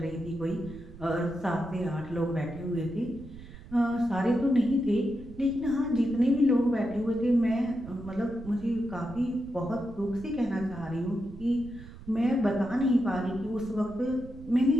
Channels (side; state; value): right; noise; rumble, 17 dB below the sound